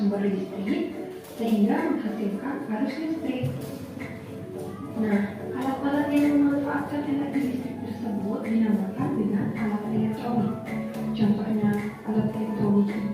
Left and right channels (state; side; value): identical; both; correlation 1.00